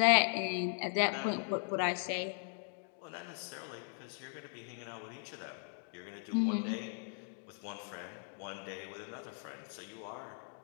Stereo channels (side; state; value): right; silent; 52 dB below the other